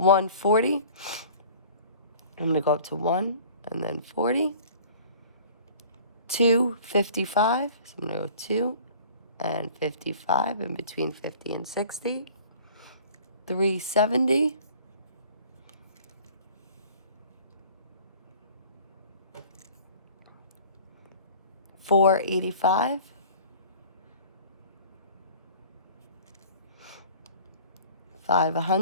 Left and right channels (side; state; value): both; inverted; correlation -0.47